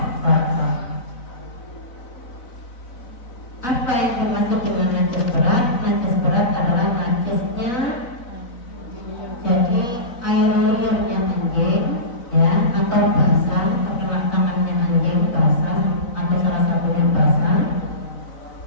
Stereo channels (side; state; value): right; late; 4.0 ms